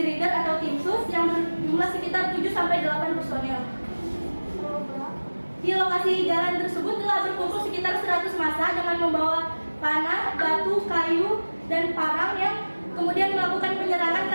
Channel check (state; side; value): inverted; both; correlation -1.00